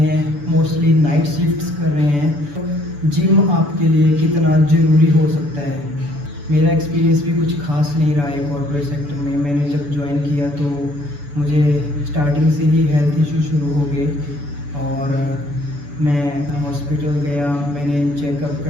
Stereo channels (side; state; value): left; late; 6.9 ms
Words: मोस्टली नाइट शिफ्ट्स कर रहे हैं, तो जिम आपके लिए कितना ज़रूरी हो सकता है। मेरा एक्सपीरियंस भी कुछ ख़ास नहीं रहा है कॉर्पोरेट सेक्टर में। मैंने जब ज्वाइन किया तो मुझे स्टार्टिंग से ही हेल्थ इशू शुरू हो गए और मैं हॉस्पिटल गया, मैंने चेकअप